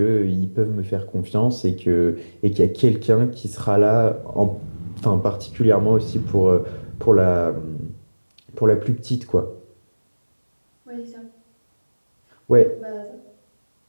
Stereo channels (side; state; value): both; inverted; correlation -1.00